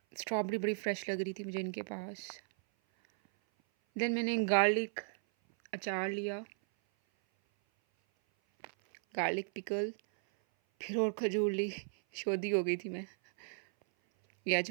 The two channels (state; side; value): silent; left; 54 dB below the other